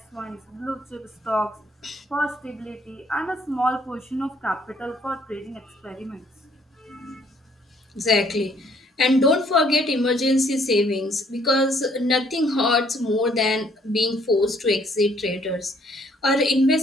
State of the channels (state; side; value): normal; both; correlation 0.64